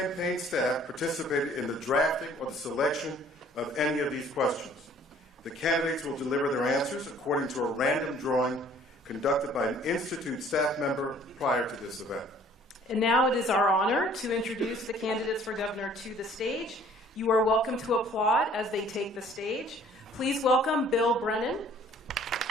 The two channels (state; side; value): normal; both; correlation 0.55